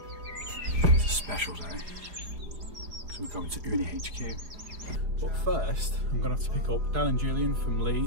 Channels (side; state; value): left; late; 5.0 ms